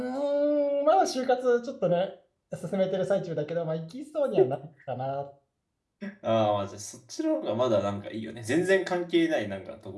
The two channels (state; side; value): identical; both; correlation 1.00